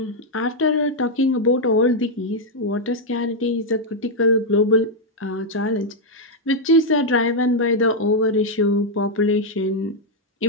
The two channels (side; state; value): both; normal; correlation -0.01